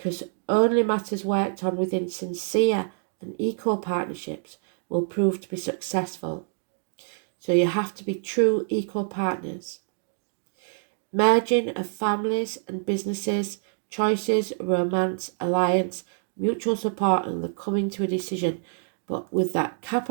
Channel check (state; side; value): silent; left; digital silence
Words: only matters worked on within sincere and equal partnerships will prove to be successful. So you have to be true equal partners. Merging of families and businesses, choices, romance, alliance, mutual support, and the coming to a decision. But with that